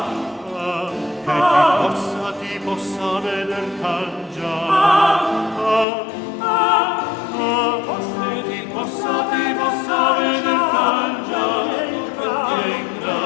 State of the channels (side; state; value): right; drops out; at 5.9 s